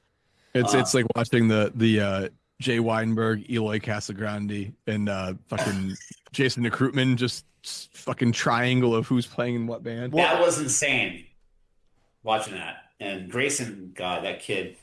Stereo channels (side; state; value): both; identical; correlation 1.00